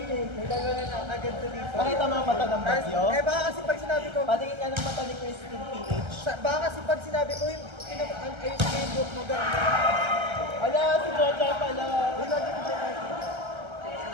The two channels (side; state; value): left; late; 1.3 ms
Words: dalawa na agad to dito. Nakita mo ang mata ng bagyo? Eh baka kasi pag sinabi ko, Patingin ka ng mata ni Christine PH. baka kasi pag sinabi ko yung Facebook mo gano'n. Ala, si Jojo pala.